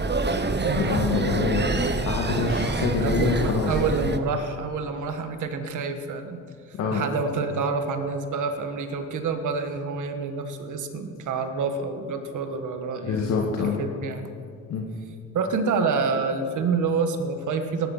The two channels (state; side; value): normal; both; correlation 0.21